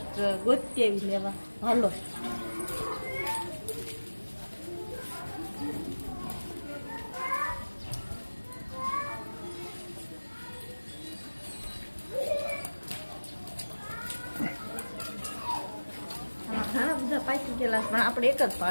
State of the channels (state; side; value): inverted; both; correlation -1.00